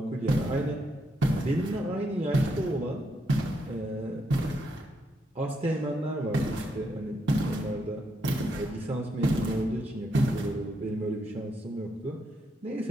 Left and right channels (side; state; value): both; normal; correlation 0.79